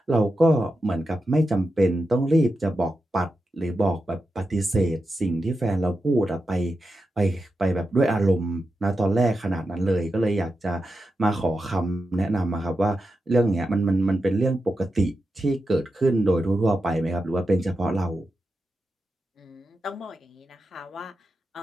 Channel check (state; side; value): normal; both; correlation 0.89